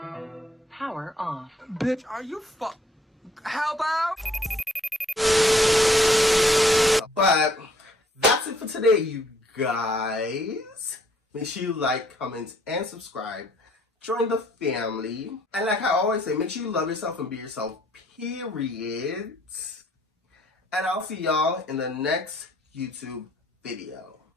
Power off. Bitch, are you how about? But that's it for today, you guys. Make sure you like, comment, and subscribe. Join the family. And like I always say, make sure you love yourself and be yourself, period. And I'll see y'all in the next YouTube video.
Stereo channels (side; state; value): both; normal; correlation 0.63